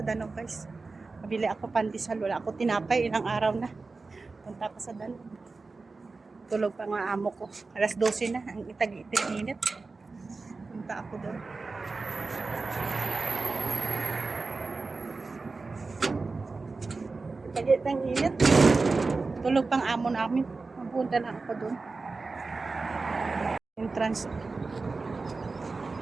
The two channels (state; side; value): quieter; left; 3.9 dB